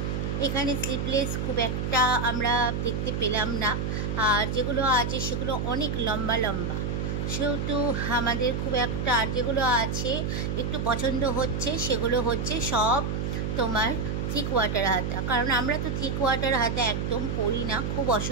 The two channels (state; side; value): noise; right; hum, 1 dB below the sound